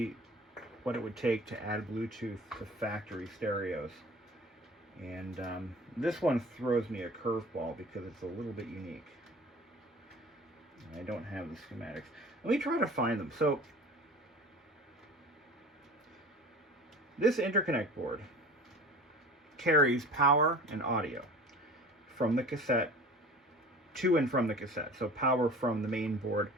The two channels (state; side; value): normal; both; correlation 0.41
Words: what it would take to add Bluetooth to factory stereos. And this one throws me a curveball because it's a little bit unique. I don't have the schematics. Let me try to find them. So this interconnect board carries power and audio from the cassette to and from the cassette. So power from the main board,